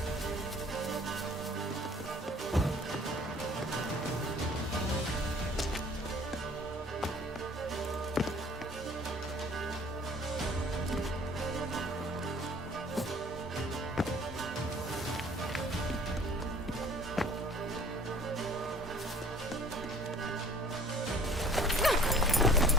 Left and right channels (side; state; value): both; normal; correlation 0.51